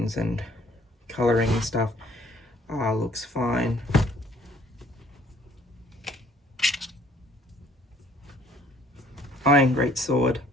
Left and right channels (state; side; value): normal; both; correlation 0.59